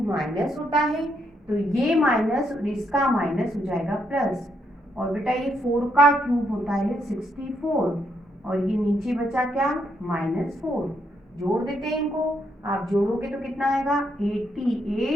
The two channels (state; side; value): normal; both; correlation 0.77